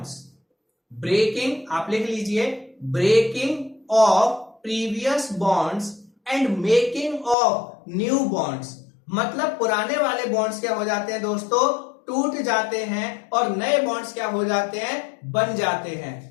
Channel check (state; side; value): drops out; right; at 7.4 s